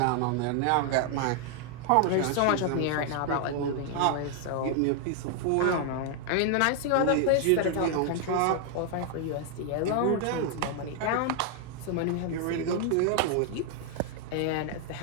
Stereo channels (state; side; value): different; both; correlation 0.00